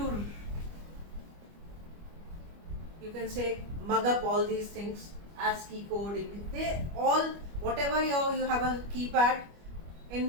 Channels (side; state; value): left; late; 25 ms